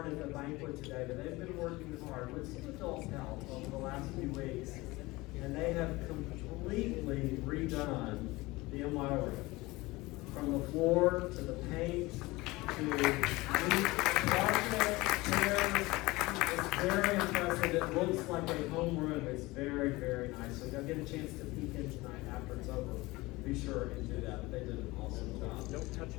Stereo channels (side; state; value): right; quieter; 21.3 dB